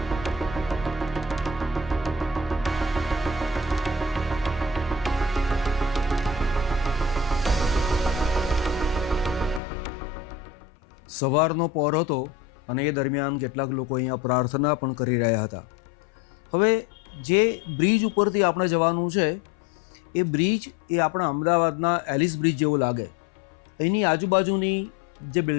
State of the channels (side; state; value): right; drops out; at 9.6 s